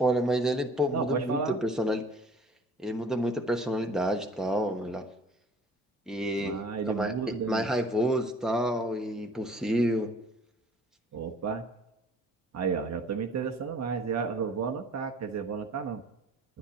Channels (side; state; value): both; normal; correlation 0.52